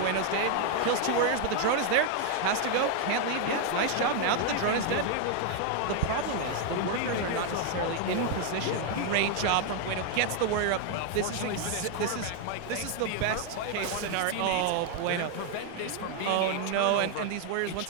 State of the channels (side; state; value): both; different; correlation 0.01